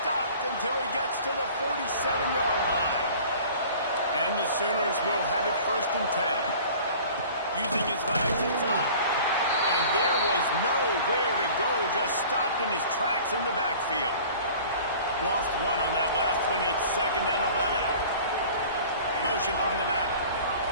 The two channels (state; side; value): inverted; both; correlation -0.45